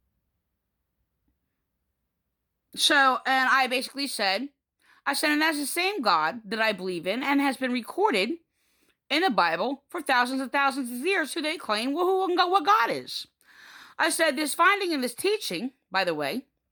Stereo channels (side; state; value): both; identical; correlation 1.00